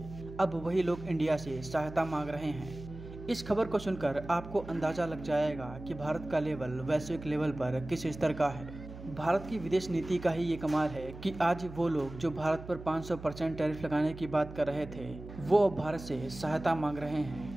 अब वही लोग इंडिया से सहायता मांग रहे हैं। इस खबर को सुनकर आपको अंदाजा लग जाएगा कि भारत का लेवल वैश्विक लेवल पर किस स्तर का है। भारत की विदेश नीति का ही ये कमाल है कि आज वो लोग जो भारत पर 500% टैरिफ लगाने की बात कर रहे थे, वो अब भारत से सहायता मांग रहे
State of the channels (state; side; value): noise; right; hum, 13 dB below the sound